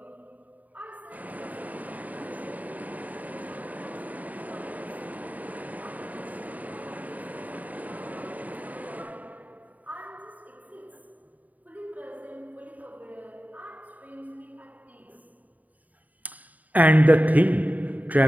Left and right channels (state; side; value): late; left; 0.075 ms